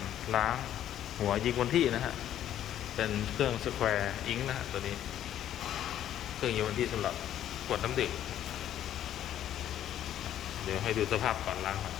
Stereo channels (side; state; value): right; quieter; 11.3 dB